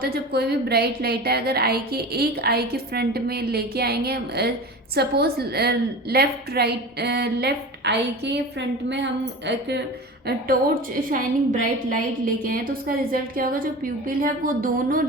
है, जब कोई भी ब्राइट लाइट है अगर एक आई के फ्रंट में लेके आएंगे, सपोज लेफ्ट आई के फ्रंट में हम एक टॉर्च शाइनिंग ब्राइट लाइट लेके आए तो उसका रिजल्ट क्या होगा, जो प्यूपिल है वो दोनों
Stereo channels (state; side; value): normal; both; correlation 0.33